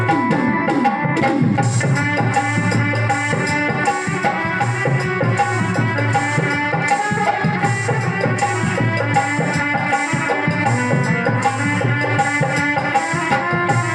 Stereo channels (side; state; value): both; identical; correlation 1.00